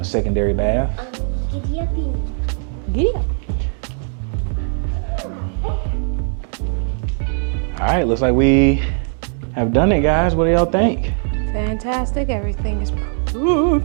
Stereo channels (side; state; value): left; silent; 58 dB below the other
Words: the secondary bath. Giddy uppy. Giddy up. All right, looks like we have done it, guys. What do y'all think? Fantastic. Everything is love